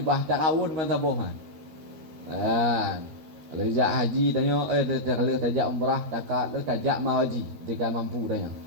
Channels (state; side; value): late; left; 13 ms